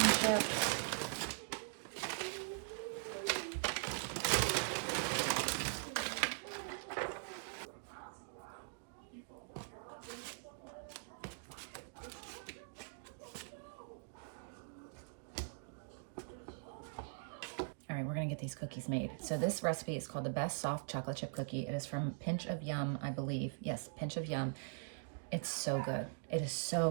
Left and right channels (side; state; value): left; silent; digital silence